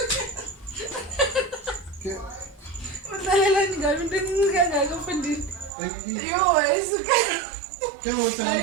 Ke Udlalela ngabe into engikangaka mfundini. Yo, ayisuka. ke ngotsa.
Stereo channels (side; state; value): left; drops out; at 5.7 s